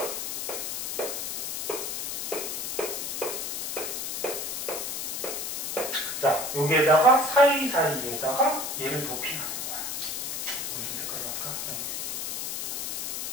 자, 여기에다가 사이사이에다가 얘를 도핑하는 거야. 무슨 색깔로 할까? 네.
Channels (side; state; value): left; noise; hiss, 3 dB below the sound